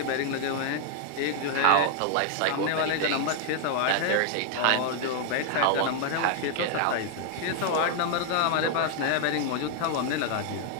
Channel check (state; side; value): different; both; correlation 0.00